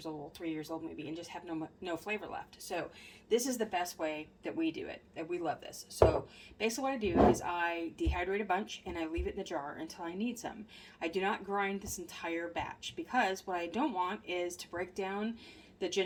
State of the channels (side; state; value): both; identical; correlation 1.00